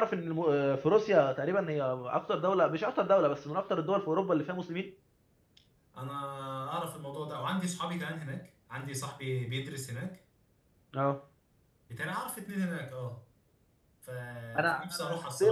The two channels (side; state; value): both; identical; correlation 1.00